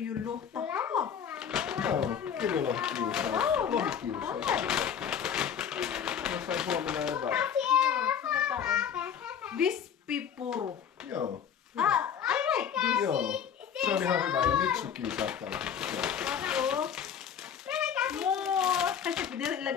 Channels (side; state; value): right; quieter; 8.1 dB